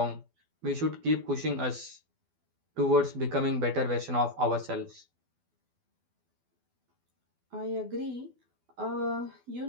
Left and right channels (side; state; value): left; late; 12 ms